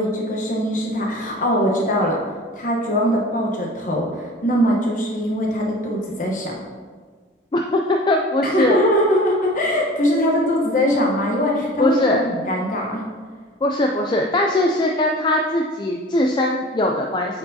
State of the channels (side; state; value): both; normal; correlation 0.41